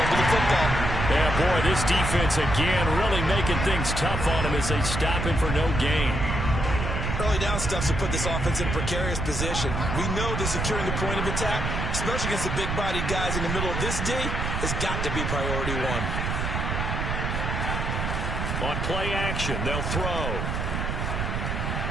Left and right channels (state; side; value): noise; right; rumble, 1 dB below the sound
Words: the football. Yeah, boy, this defense again really making things tough on him as they stop him for no gain. Early down stuff to put this offense in a precarious position. We know that securing the point of attack, especially against the big-bodied guys in the middle of this D, has got to be priority 1. On play action, they'll throw.